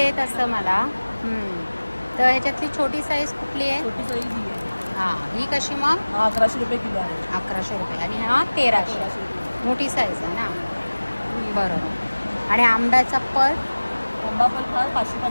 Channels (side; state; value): both; inverted; correlation -1.00